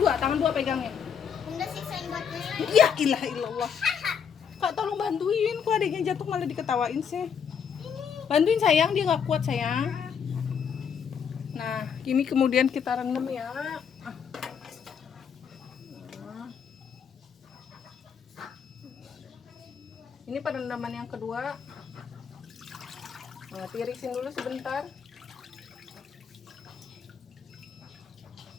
dua pegangnya. Bunda siksain buatnya. Ya ilah illallah. Kak tolong bantuin, kok adiknya jatuh malah diketawain sih. Bantuin sayang, dia nggak kuat sayang. Nah, ini kemudian kita rendam ya. Nah. Ini perendaman yang kedua. Nah, tirisin dulu sebentar.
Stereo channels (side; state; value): right; quieter; 7.2 dB